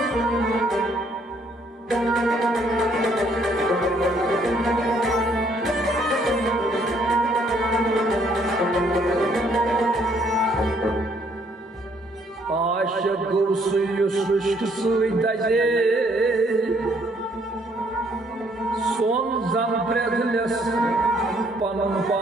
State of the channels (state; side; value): normal; both; correlation 0.66